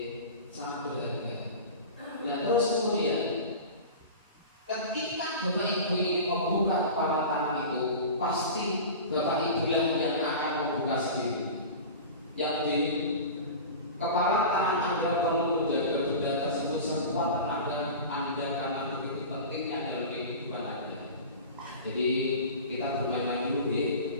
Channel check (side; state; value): both; inverted; correlation -0.33